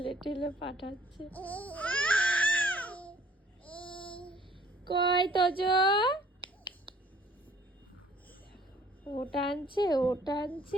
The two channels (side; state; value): both; normal; correlation 0.58